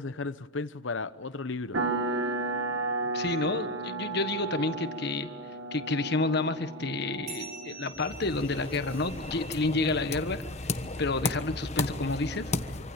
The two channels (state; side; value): normal; both; correlation 0.20